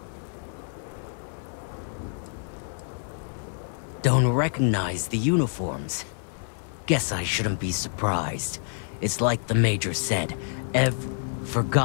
Don't recognize the uniforms. Guess I shouldn't be surprised. It's like the Major said,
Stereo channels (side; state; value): right; silent; 60 dB below the other